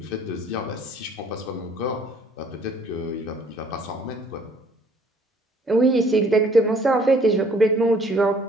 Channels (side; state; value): both; normal; correlation 0.59